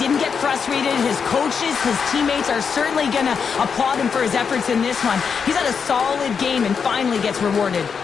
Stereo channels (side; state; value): right; quieter; 6.2 dB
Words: get frustrated. His coaches, his teammates are certainly going to applaud him for his efforts in this one. He's had a solid game and finally gets rewarded.